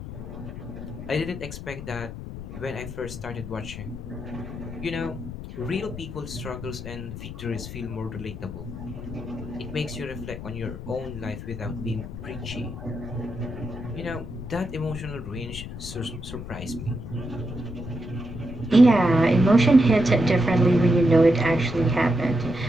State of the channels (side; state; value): left; noise; rumble, 10 dB below the sound